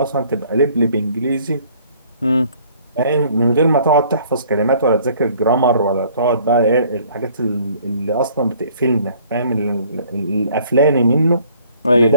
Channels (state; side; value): inverted; both; correlation -0.58